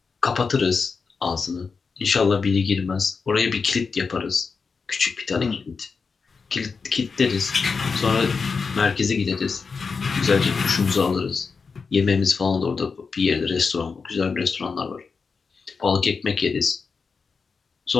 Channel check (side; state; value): right; quieter; 5.1 dB